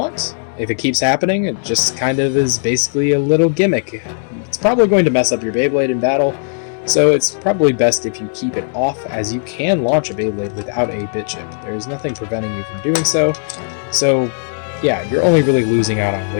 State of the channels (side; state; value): right; silent; digital silence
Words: If it keeps happening, it just kind of is basically a little gimmick. It's probably going to mess up your Beyblade in battle, so it's probably best if you keep it off, as you can launch a Beyblade without a bit chip. There's nothing preventing you from doing so. So yeah, you're only really losing out on